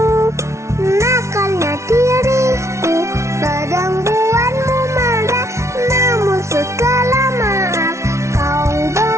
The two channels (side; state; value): left; late; 0.13 ms